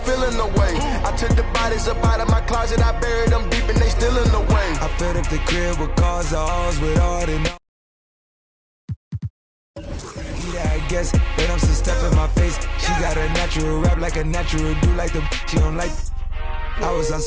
feeling the way. I took the bodies up out of my closet. I buried them deep and they still in the way. I filled up the crib with cars, the halls with all the I guess, but I'm some stuff in my face. She got a natural rap like a natural do like the she don't like. I was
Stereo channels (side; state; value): both; identical; correlation 1.00